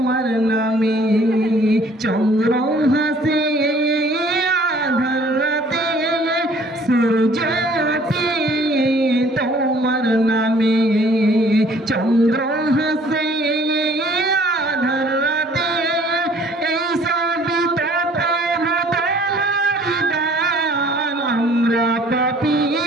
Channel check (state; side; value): normal; both; correlation 0.56